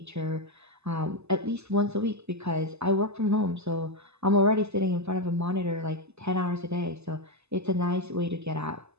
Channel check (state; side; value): late; left; 0.80 ms